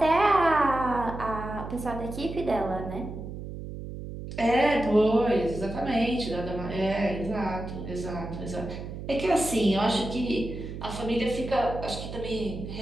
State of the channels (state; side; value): noise; right; hum, 9 dB below the sound